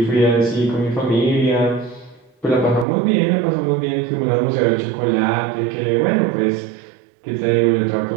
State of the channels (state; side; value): drops out; left; at 2.9 s